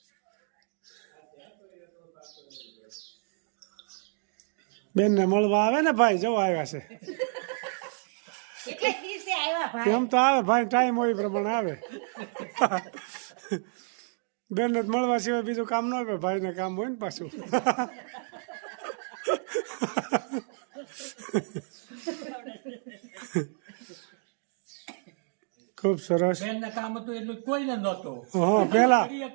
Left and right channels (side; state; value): left; silent; 58 dB below the other